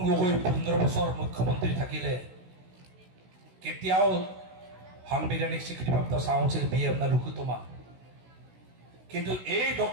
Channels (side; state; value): left; late; 16 ms